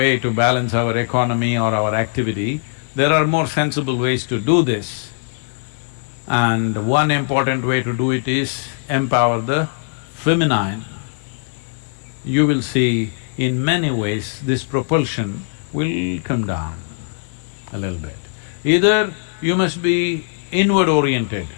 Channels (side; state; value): right; silent; digital silence